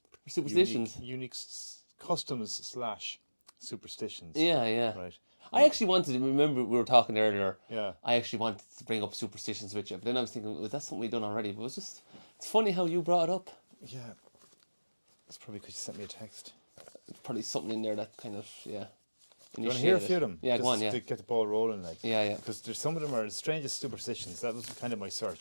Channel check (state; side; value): inverted; both; correlation -1.00